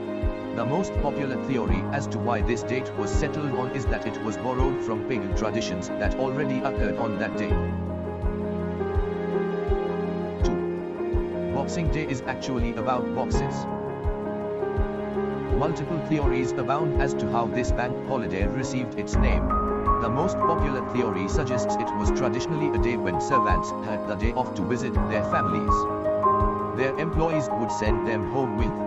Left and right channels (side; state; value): both; identical; correlation 1.00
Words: The most popular theory as to why this date was settled on is that it was borrowed from pagan traditions that already occurred on that day. 2. Boxing Day is actually about boxes. Multiple theories abound as to how this bank holiday received its name. The most popular theory suggests it was traditionally a day when servants had the day off to visit their families. Their employees would send them home with